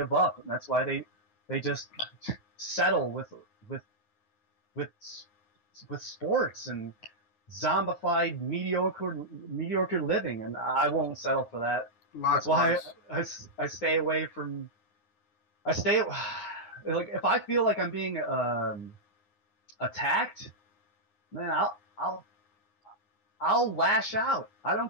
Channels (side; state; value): right; late; 9.6 ms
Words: up, and that's why they just settle with with with sports and zombified mediocre living, and I won't settle for that. That's why Likewise. I stay away from. I stay like if I feel like I'm being attacked, man, I'll lash out. I